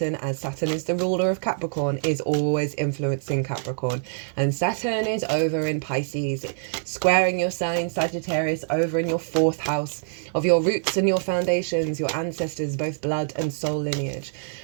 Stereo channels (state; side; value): silent; left; digital silence